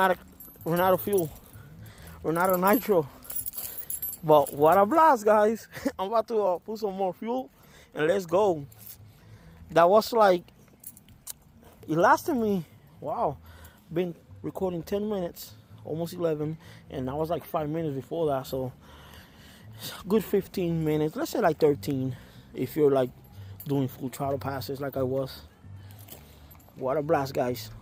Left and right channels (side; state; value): both; identical; correlation 1.00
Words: out of fuel. We're out of nitro. But what a blast, guys. I'm about to put some more fuel and let's go. That was like, it lasted me, wow, been recording 10 minutes, almost 11, and that was like 5 minutes before that, so good 15 minutes, let's say like 13, if you're like doing full throttle passes like I was. What a blast, guys.